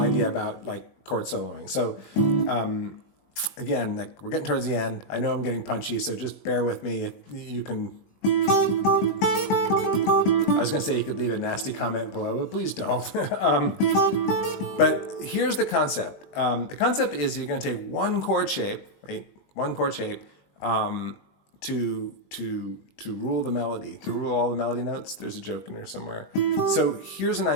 about chord soloing. So again, we're getting towards the end. I know I'm getting punchy, so just bear with me. You can, I was going to say you could leave a nasty comment below, but please don't. But here's the concept. The concept is you're going to take one chord shape, to rule the melody, to rule all the melody notes. There's a joke in there somewhere. So here's an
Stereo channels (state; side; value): late; right; 20 ms